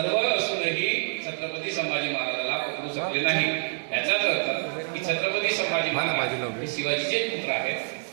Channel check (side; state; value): left; silent; digital silence